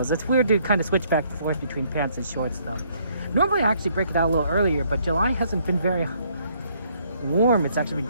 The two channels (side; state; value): both; inverted; correlation -0.67